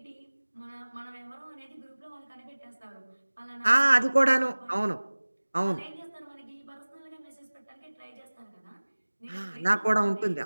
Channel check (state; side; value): inverted; both; correlation -1.00